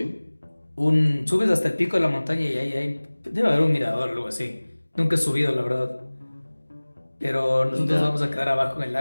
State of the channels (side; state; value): both; inverted; correlation -1.00